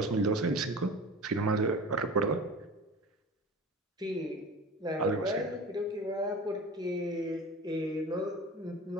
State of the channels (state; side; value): normal; both; correlation 0.36